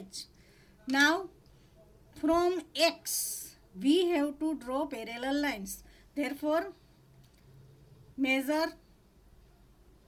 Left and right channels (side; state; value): both; identical; correlation 1.00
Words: Now from X we have to draw parallel lines. Therefore, measure